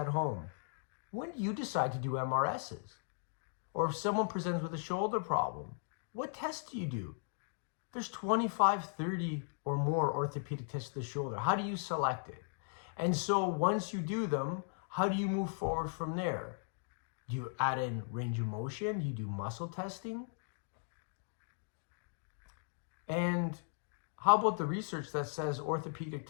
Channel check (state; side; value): silent; right; digital silence